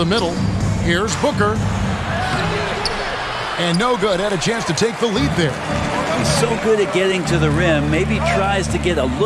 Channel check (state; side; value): identical; both; correlation 1.00